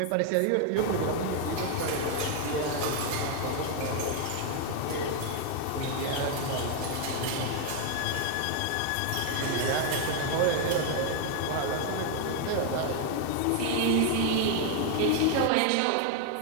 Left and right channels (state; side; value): different; both; correlation 0.01